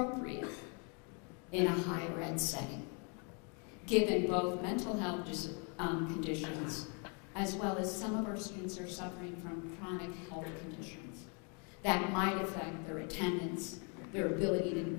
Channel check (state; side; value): quieter; right; 36.7 dB